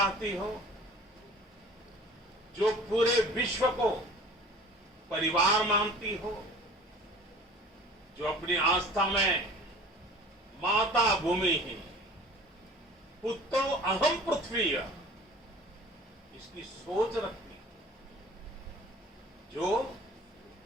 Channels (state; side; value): normal; both; correlation 0.45